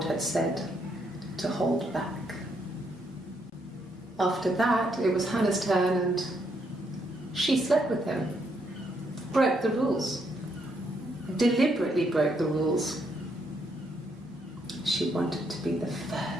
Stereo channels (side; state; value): both; normal; correlation 0.75